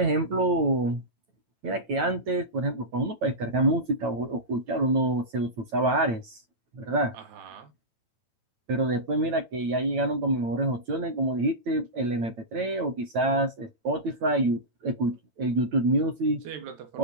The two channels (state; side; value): late; left; 9.0 ms